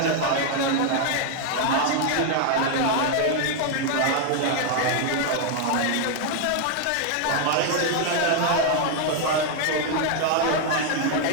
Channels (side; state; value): both; different; correlation 0.00